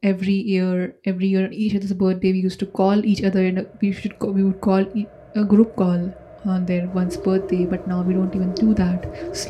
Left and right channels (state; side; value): identical; both; correlation 1.00